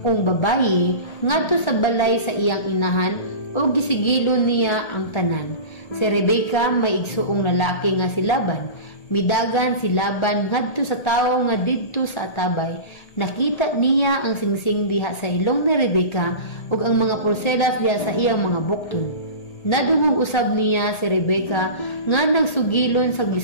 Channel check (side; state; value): right; late; 1.8 ms